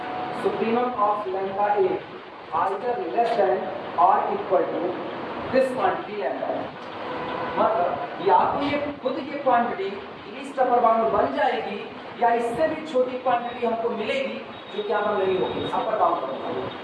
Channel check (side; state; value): both; identical; correlation 1.00